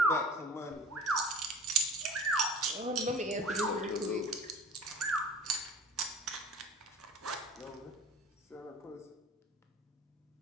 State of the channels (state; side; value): normal; both; correlation 0.40